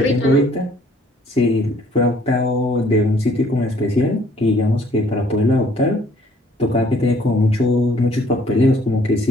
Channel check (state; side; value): normal; both; correlation 0.60